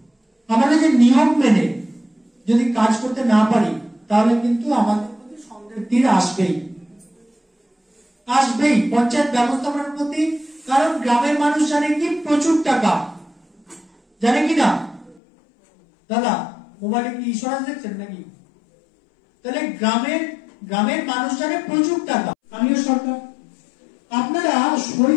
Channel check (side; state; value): right; drops out; at 15.2 s